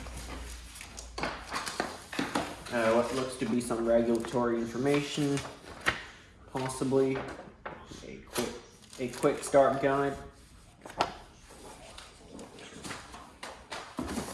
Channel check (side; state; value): both; identical; correlation 1.00